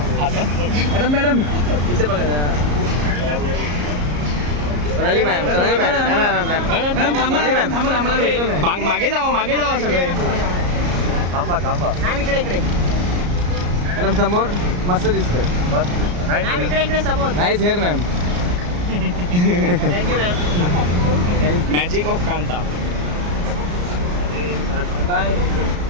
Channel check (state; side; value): late; left; 34 ms